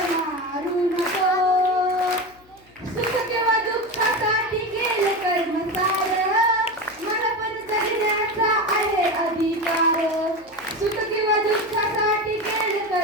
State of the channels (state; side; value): noise; left; hum, 30 dB below the sound